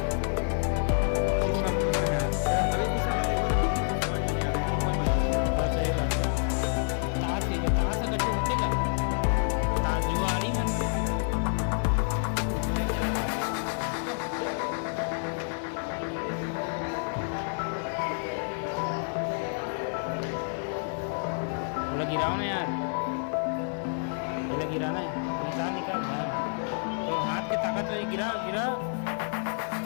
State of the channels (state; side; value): silent; right; 59 dB below the other